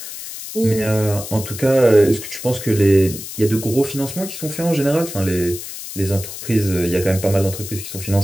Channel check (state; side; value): noise; left; hiss, 10 dB below the sound